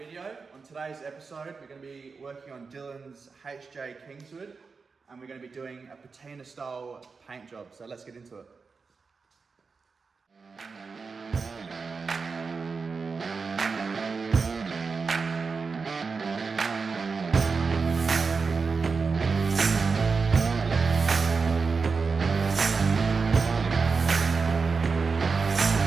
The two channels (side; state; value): left; quieter; 4.8 dB